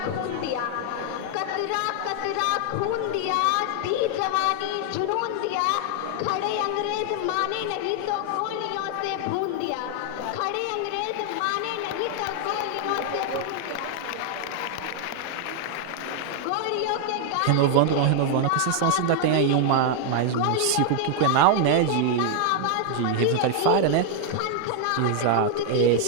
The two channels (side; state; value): both; different; correlation 0.00